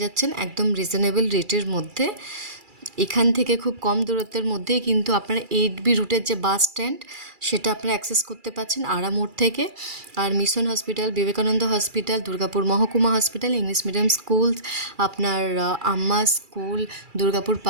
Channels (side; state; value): left; late; 2.3 ms